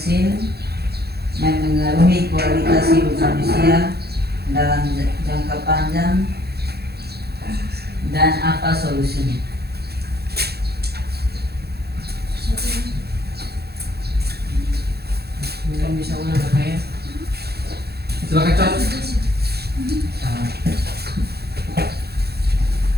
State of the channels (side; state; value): left; late; 0.47 ms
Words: memengaruhi kualitas hidup manusia dalam jangka panjang dan apa solusinya? Mungkin bisa ulang Kak ya. Silakan Cok.